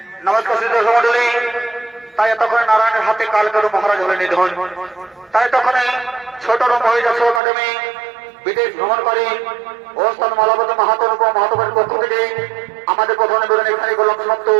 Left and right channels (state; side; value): drops out; left; at 7.4 s